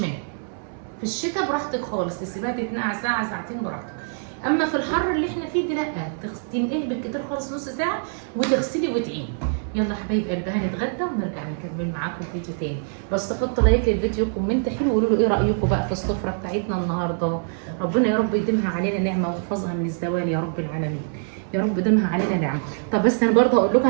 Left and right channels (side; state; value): left; silent; digital silence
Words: في الشتاء براحتك خالص، تسيبها تتنقع ساعه ساعتين براحتك. اما في الحر اللي احنا فيه ده لا، تنقعي بالكتير خالص نص ساعه وتغسلي وتعيني. يلا حبايب قلبي هنتغدى ونرجع نكمل معاكم فيديو تاني. بس حطوا لايك للفيديو، كومنت حلو، وقولوا له ايه رايكم بقى في السفره بتاعتنا النهارده. ربنا يا رب يديمها علينا نعمه ويحفظها من الزوال يا رب العالمين. يا رب يديمها علينا نعمه. طب بس انا برضه هقول لكم